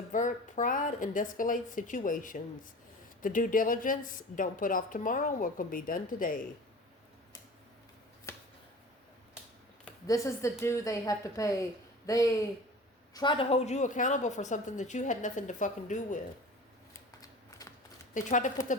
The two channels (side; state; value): both; normal; correlation 0.39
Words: pride and de-escalate situations. The due diligence, don't put off tomorrow what can be done today. This is the due they have to pay. They tried to hold you accountable for something that you had nothing to fucking do with. They tried to put the